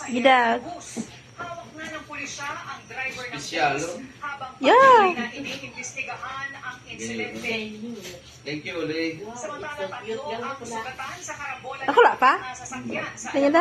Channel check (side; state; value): both; identical; correlation 1.00